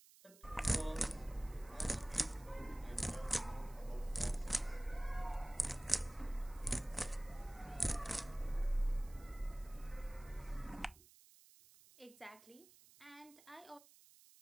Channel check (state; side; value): noise; right; hiss, 23 dB below the sound